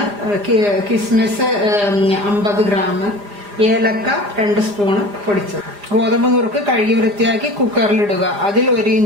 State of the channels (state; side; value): late; left; 4.9 ms